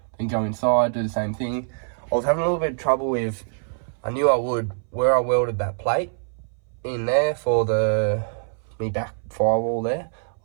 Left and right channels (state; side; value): silent; left; 61 dB below the other